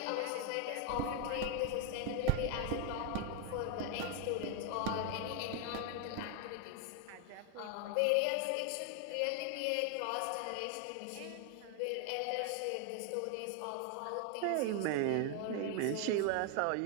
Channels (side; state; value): both; different; correlation 0.01